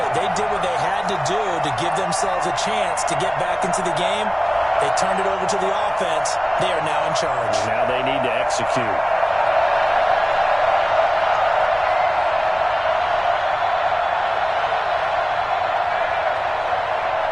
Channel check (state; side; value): identical; both; correlation 1.00